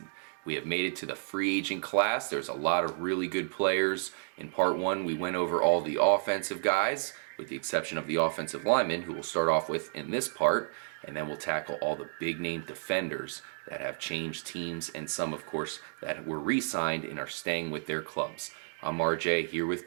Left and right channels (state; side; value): silent; left; digital silence